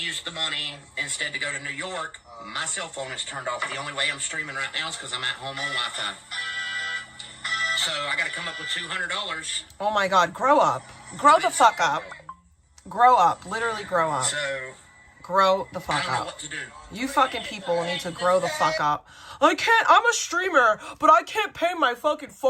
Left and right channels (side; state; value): both; identical; correlation 1.00